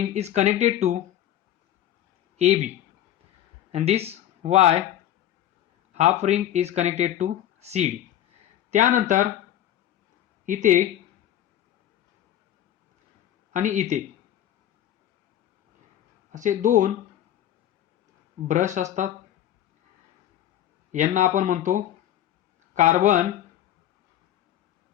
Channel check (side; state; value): right; quieter; 11.9 dB